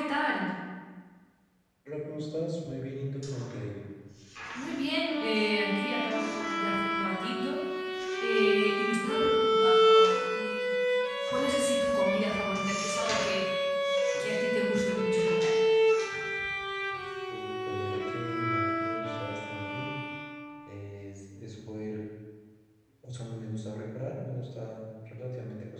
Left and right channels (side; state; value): both; identical; correlation 1.00